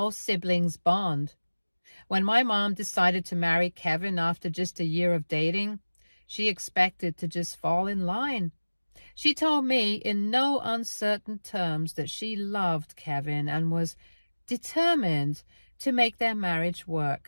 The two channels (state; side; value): inverted; both; correlation -1.00